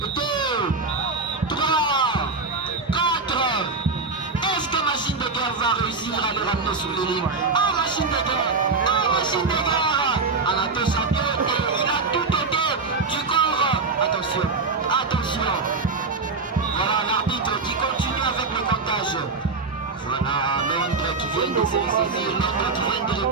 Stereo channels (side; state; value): left; quieter; 4.2 dB